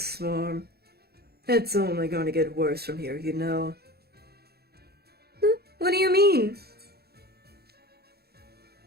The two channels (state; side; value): late; left; 0.46 ms